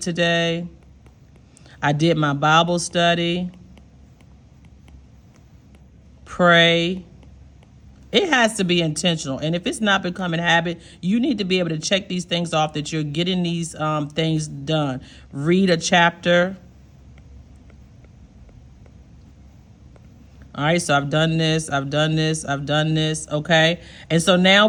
I did my Bible study. Pray. It has to be intentional. And if it's not becoming a habit, you need to be able to check these things off that you're getting these things done. Read a chapter. All right, so I've done this, I've done this, I've done this, okay? And so now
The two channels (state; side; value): identical; both; correlation 1.00